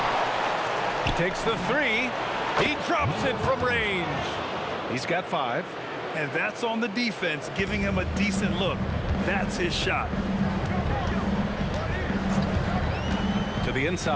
He takes the three. He drops it from range. He's got 5. And that's on the defense, giving him a decent look. That's his shot. To the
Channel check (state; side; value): identical; both; correlation 1.00